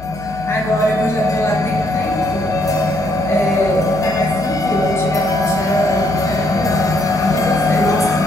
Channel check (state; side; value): noise; left; hum, 17 dB below the sound